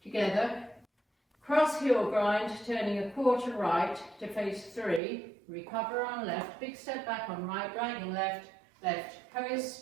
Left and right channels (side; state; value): left; drops out; at 5.0 s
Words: together, cross heel grind, turning a quarter right to face 3, recover on left, big step back on right, dragging left, left,